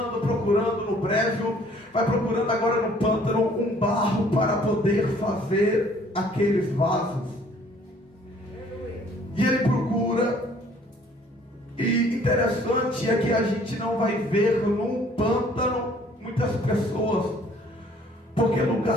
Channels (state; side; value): normal; both; correlation 0.58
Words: procurando no brejo, vai procurando agora no pântano um barro para poder fazer aqueles vasos. E ele procura, e interessante é que a gente não vai ver num pântano muitas pessoas. Porque